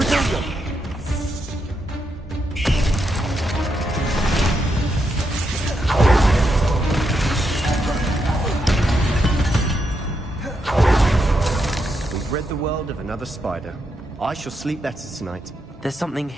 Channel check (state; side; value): normal; both; correlation 0.82